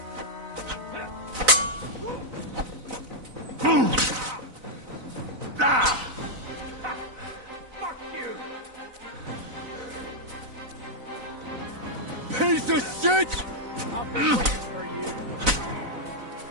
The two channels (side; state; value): left; late; 4.0 ms